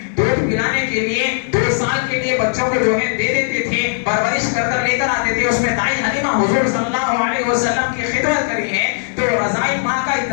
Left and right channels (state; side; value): silent; right; 67 dB below the other